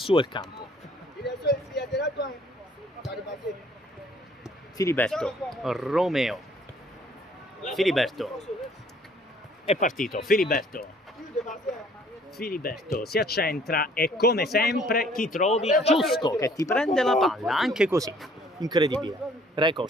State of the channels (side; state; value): both; normal; correlation 0.59